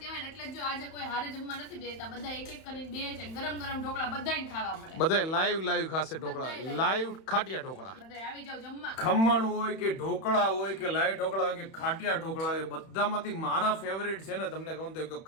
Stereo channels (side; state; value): right; late; 31 ms